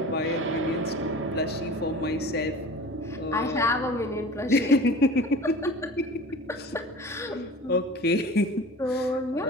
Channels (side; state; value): both; normal; correlation 0.39